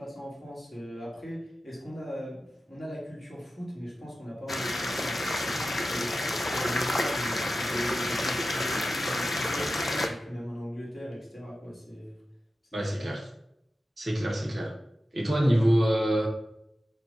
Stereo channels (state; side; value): normal; both; correlation 0.93